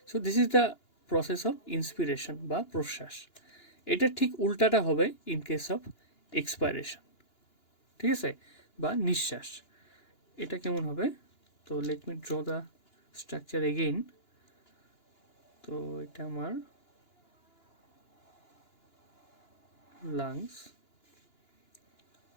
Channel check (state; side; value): late; right; 2.9 ms